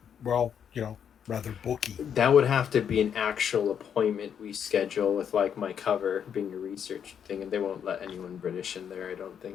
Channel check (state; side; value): quieter; right; 8.2 dB